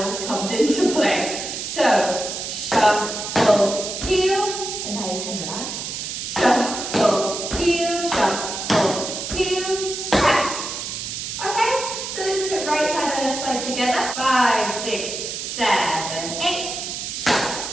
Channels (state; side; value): noise; right; hiss, 5 dB below the sound